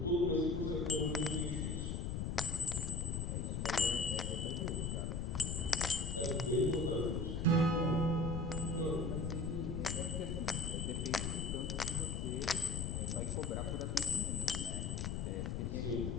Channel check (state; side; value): noise; left; rumble, 2 dB below the sound